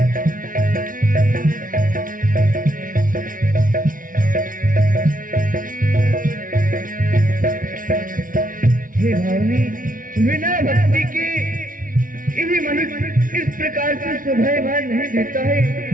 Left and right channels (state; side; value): late; left; 0.39 ms